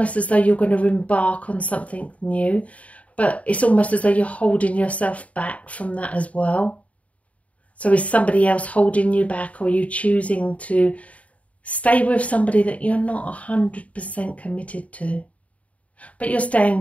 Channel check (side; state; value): right; late; 0.067 ms